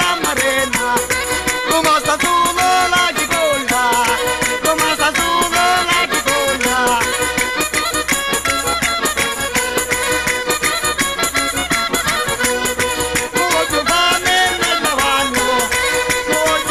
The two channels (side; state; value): both; identical; correlation 1.00